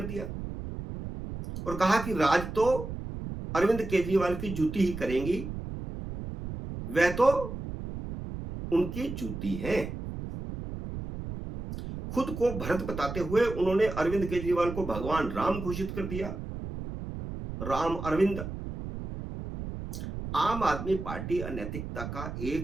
दिया और कहा कि राज तो अरविंद केजरीवाल की जूती ही करेंगी, वह तो उनकी जूती है। खुद को भरत बताते हुए उन्होंने अरविंद केजरीवाल को भगवान राम घोषित कर दिया। राम अरविंद। आम आदमी पार्टी अनैतिकता का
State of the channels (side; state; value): right; noise; rumble, 8 dB below the sound